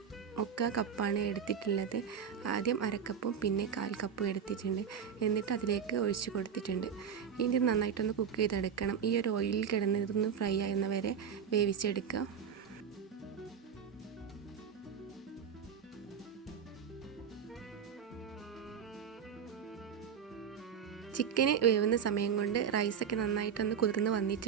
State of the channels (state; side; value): quieter; left; 7.4 dB